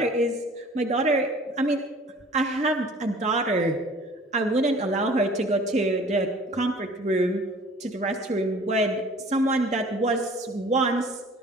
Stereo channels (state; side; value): normal; both; correlation 0.49